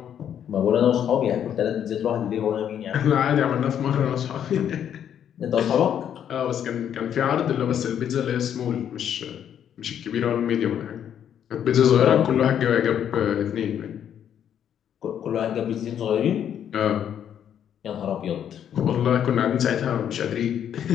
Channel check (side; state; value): right; quieter; 9.4 dB